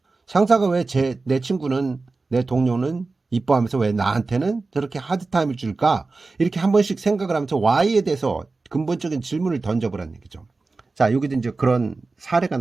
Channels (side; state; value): left; quieter; 3.7 dB